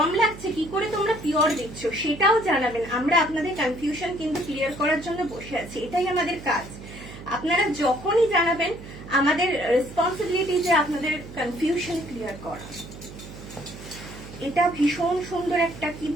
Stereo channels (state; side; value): noise; right; hum, 14 dB below the sound